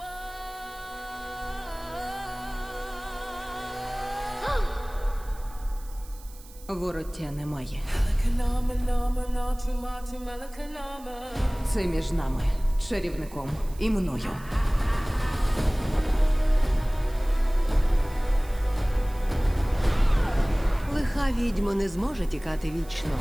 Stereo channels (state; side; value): noise; right; hiss, 22 dB below the sound